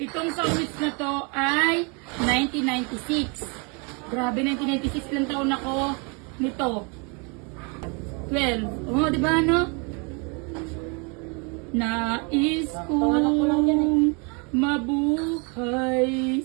song hits na to ay 1996. Grabe, 1996, ilang taon ako nito. 12. Di ba ano? Nais kong mabuhay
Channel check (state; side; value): quieter; left; 33.1 dB